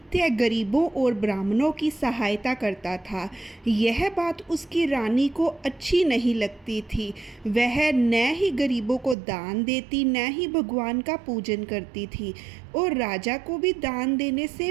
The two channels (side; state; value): left; drops out; at 9.2 s